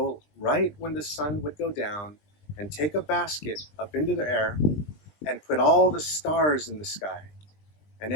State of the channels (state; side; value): late; right; 20 ms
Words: right when the sun would go down and take a basket up into the air and put all the stars in the sky. And